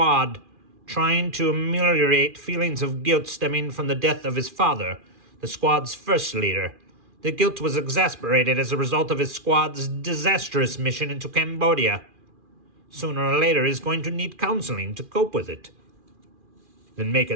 trying to ameliorate feelings of guilt stemming from the death of his father, the squad's first leader. The guilt was exacerbated as a result of his squad's disastrous mission into Cambodia. Sooner or later, he's going to need counseling to cope with it. Then make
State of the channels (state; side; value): late; left; 2.4 ms